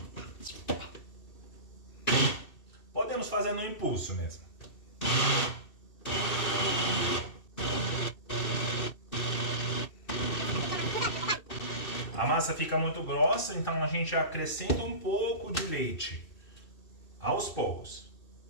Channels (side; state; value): right; late; 2.6 ms